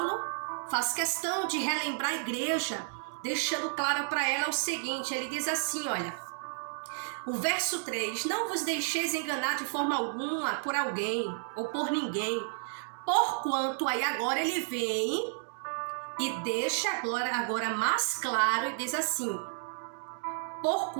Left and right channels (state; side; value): silent; left; digital silence